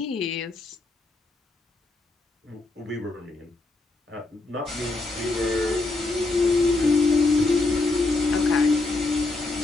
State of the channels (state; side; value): quieter; right; 3.2 dB